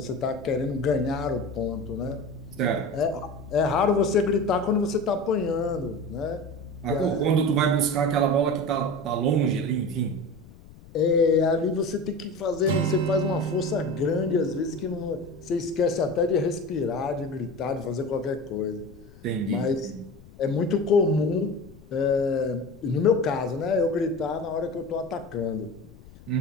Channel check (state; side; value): noise; left; rumble, 21 dB below the sound